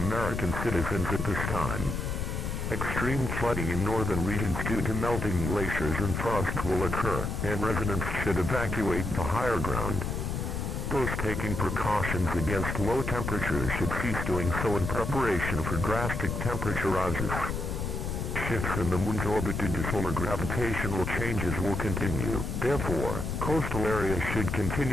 citizens at this time. Extreme flooding in northern regions due to melting glaciers and frost will occur, and residents should evacuate to higher ground. Those taking precautions against low temperatures should cease doing so in preparation for drastic temperature rises. Shifts in the moon's orbit due to solar gravitational changes will continue. Therefore, coastal areas should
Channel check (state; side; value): noise; left; rumble, 3 dB below the sound